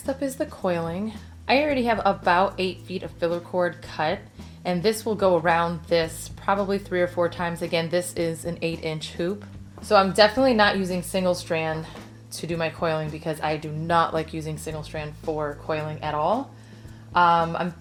up is the coiling. I already have about 8 feet of filler cord cut, and this will go around this probably 3 or 4 times. Again, this is an 8-inch hoop. So I'm definitely not using single strand to do my coiling because I do not like using single strand for coiling at all. I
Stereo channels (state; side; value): identical; both; correlation 1.00